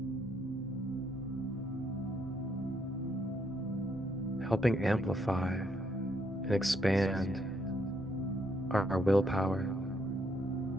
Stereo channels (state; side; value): normal; both; correlation 0.73